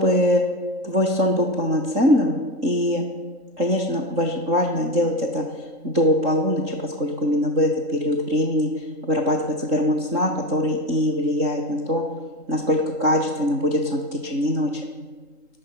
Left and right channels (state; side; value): late; left; 3.8 ms